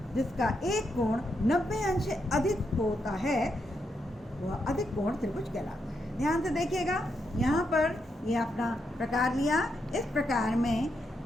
जिसका एक कोण 90 अंश से अधिक होता है, वह अधिक कोण त्रिभुज कहलाता है। ध्यान से देखिएगा, यहाँ पर ये अपना प्रकार लिया। इस प्रकार में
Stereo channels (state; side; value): normal; both; correlation 0.81